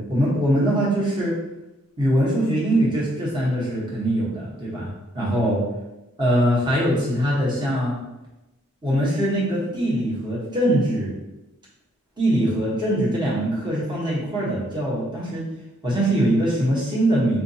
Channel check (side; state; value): both; normal; correlation 0.71